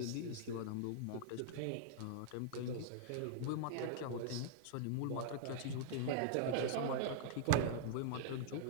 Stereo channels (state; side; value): different; both; correlation -0.01